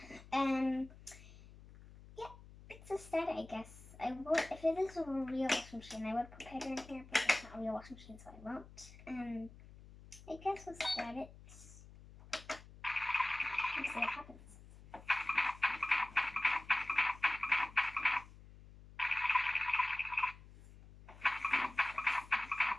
yeah, it's a start, I guess. If it is a real washing machine, I would put powder in here, but it's not a real washing machine, so I won't. I guess we'll start it. Let's see what happens.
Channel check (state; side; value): noise; left; hum, 19 dB below the sound